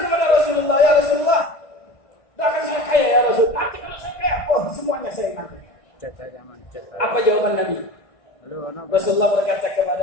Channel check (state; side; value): late; right; 1.6 ms